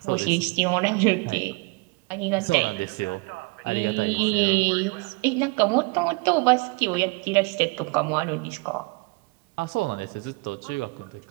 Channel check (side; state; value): left; quieter; 28.0 dB